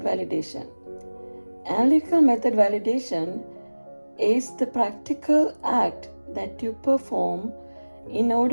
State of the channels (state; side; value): inverted; both; correlation -1.00